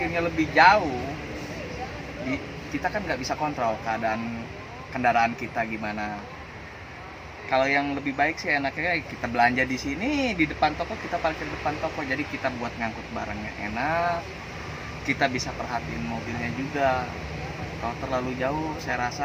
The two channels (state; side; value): identical; both; correlation 1.00